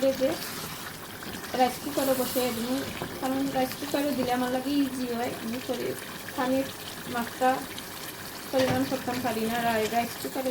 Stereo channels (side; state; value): both; identical; correlation 1.00